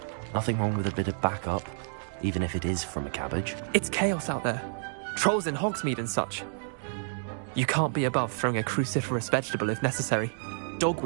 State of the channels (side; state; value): left; silent; digital silence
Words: Nothing wrong with a bit of backup, even if it is from a cabbage. It's chaos out there. Trolls in Hogsmeade and such. You can't be above throwing a cruciferous vegetable if necessary.